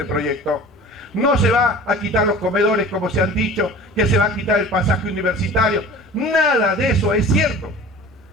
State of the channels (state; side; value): normal; both; correlation 0.41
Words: proyecto. No se va a quitar los comedores, como se han dicho, que se va a quitar el pasaje universitario. Nada de eso es cierto.